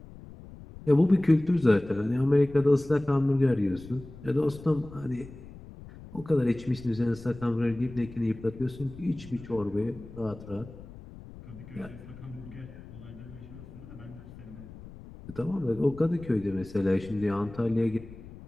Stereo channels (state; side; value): noise; left; rumble, 16 dB below the sound